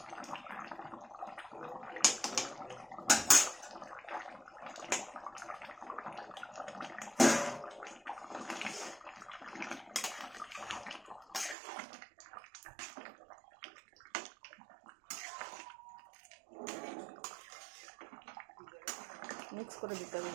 মিক্স করে দিতে হবে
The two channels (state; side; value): drops out; left; at 11.6 s